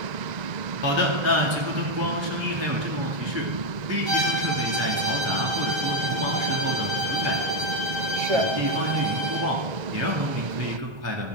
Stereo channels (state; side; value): late; left; 1.3 ms